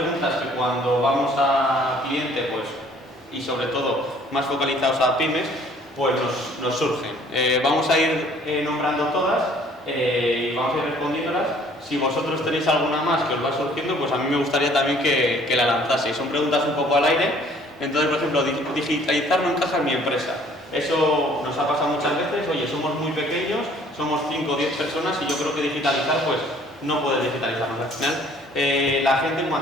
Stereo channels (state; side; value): normal; both; correlation 0.57